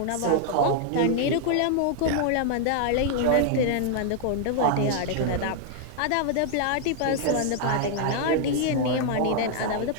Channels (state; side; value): different; both; correlation -0.01